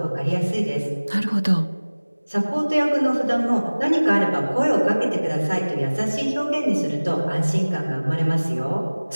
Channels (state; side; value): inverted; both; correlation -1.00